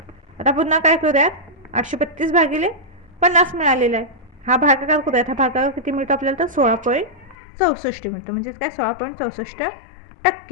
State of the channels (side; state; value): right; drops out; at 7.4 s